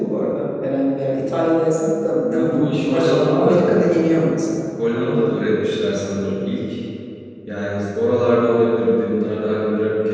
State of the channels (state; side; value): identical; both; correlation 1.00